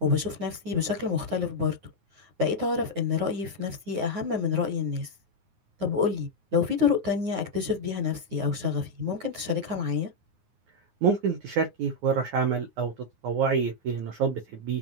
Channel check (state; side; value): late; left; 9.5 ms